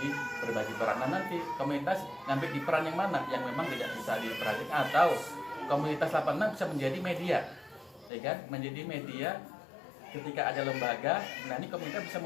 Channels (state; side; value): drops out; right; at 8.1 s